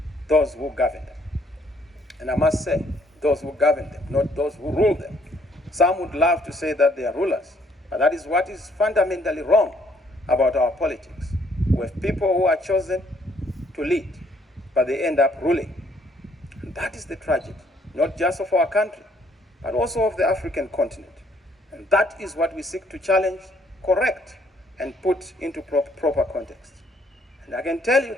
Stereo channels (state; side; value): normal; both; correlation 0.65